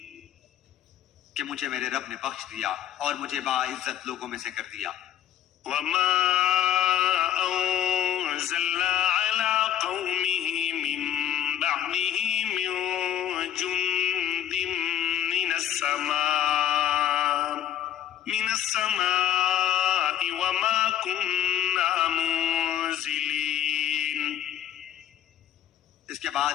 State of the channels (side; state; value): right; quieter; 11.1 dB